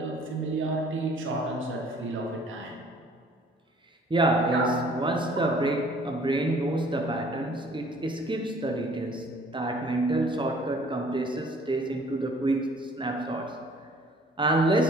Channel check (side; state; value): both; normal; correlation 0.55